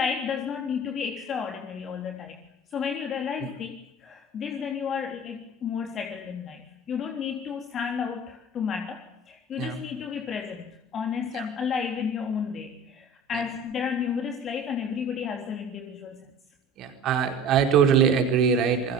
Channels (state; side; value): normal; both; correlation 0.42